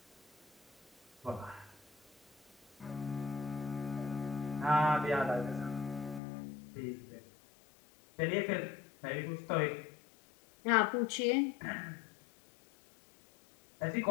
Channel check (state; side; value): drops out; right; at 6.2 s